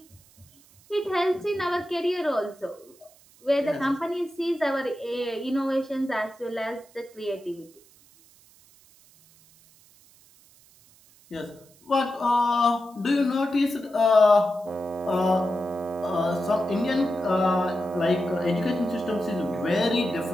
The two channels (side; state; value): right; noise; hiss, 28 dB below the sound